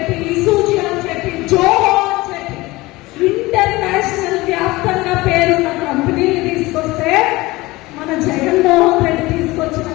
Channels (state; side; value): quieter; right; 20.6 dB